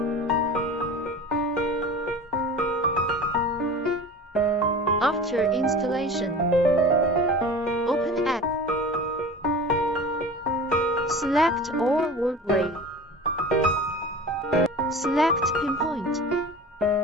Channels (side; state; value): both; normal; correlation 0.36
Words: After installation, open app. Select all word array. Select pinpoint.